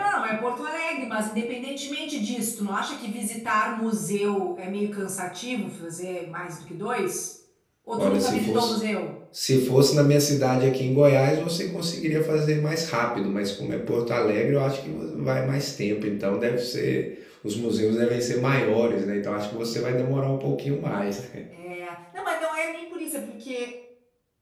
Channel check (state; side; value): identical; both; correlation 1.00